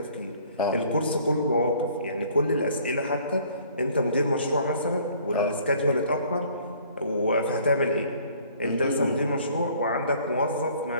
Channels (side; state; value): both; inverted; correlation -0.56